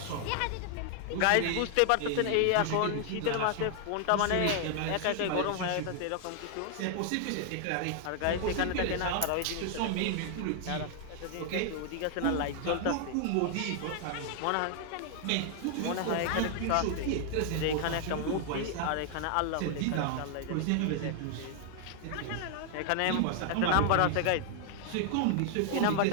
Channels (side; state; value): both; different; correlation 0.00